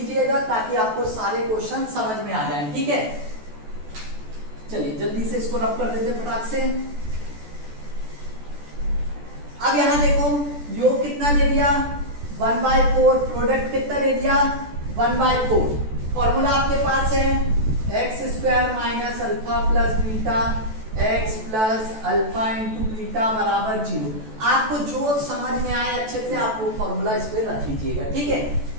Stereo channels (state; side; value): late; left; 14 ms